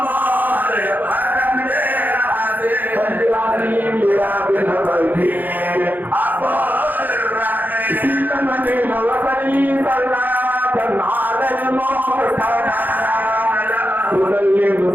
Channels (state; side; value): late; left; 0.085 ms